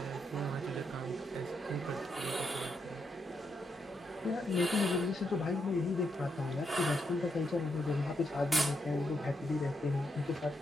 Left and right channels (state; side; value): normal; both; correlation 0.80